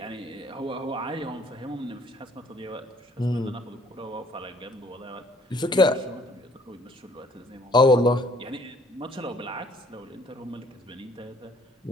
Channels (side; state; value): both; normal; correlation 0.60